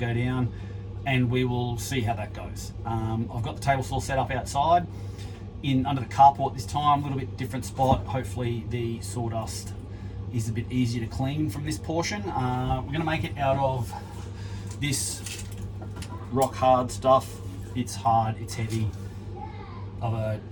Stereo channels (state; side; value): identical; both; correlation 1.00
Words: down, and we will see how that goes. I've got the table saw set up outside under the carport this time, a little bit different spot. Hopefully the sawdust is a bit easier to clean from this portion. We're going to make it out of this rock hard stuff. It's hard, it's heavy, of a